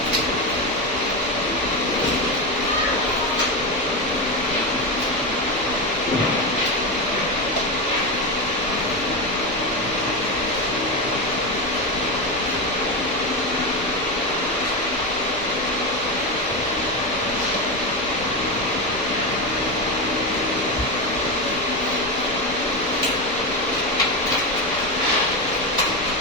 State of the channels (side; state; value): both; normal; correlation 0.14